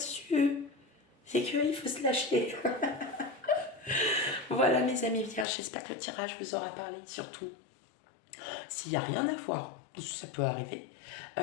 c'est qu'il faut se lâcher. Voilà mes amis vierges, j'espère que le tirage vous aura parlé. Surtout, s'il n'y a rien à voir, ça peut arriver,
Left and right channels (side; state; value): right; drops out; at 5.5 s